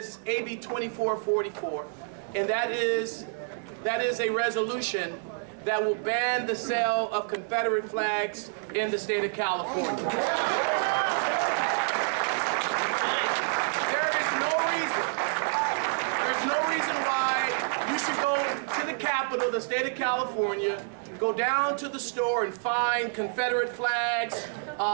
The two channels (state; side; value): silent; left; digital silence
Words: AB 2444. And that is a resolution that will ban the sale of Confederate flags in the state of California. There's no reason why you should go to the capital, the state of California, go down to the store and find Confederate flags,